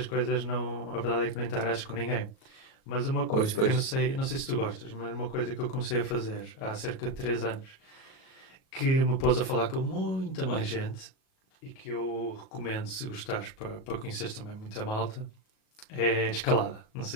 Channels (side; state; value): right; late; 37 ms